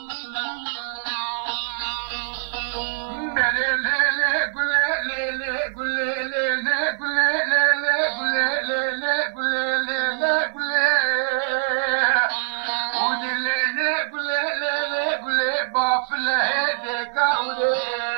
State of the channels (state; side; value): silent; left; digital silence